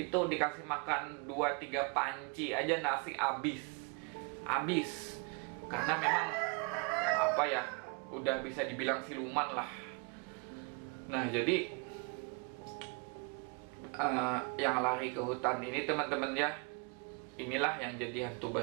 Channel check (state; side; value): quieter; left; 35.2 dB